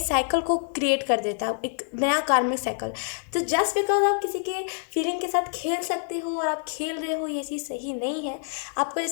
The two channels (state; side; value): silent; right; digital silence